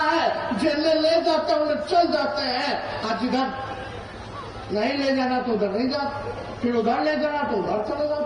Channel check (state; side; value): identical; both; correlation 1.00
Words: है। जेल ले जाते हैं उन्हें चल जाते हैं, आज इधर नहीं ले जाना तो उधर नहीं जाते, फिर उधर ले जाना तो उधर चले